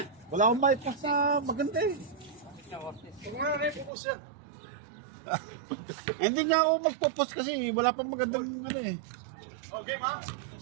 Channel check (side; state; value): left; drops out; at 3.9 s